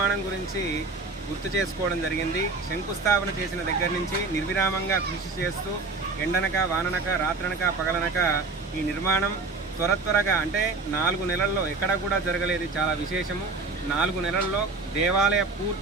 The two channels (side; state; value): left; quieter; 3.9 dB